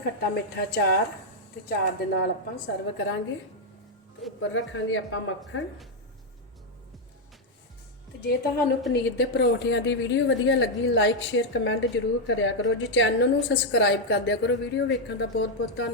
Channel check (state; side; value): normal; both; correlation 0.01